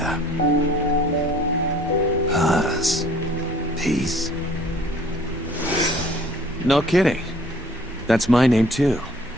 Paz. Peace. No kidding. That's my name too.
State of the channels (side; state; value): both; normal; correlation 0.54